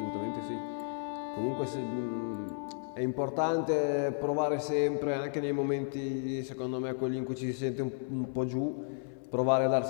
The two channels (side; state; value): right; silent; 56 dB below the other